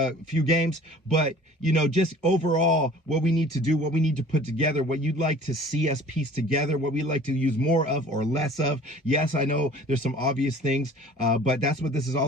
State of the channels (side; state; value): both; normal; correlation 0.48